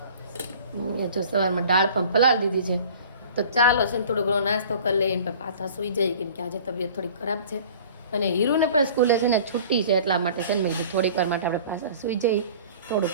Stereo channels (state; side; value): inverted; both; correlation -0.46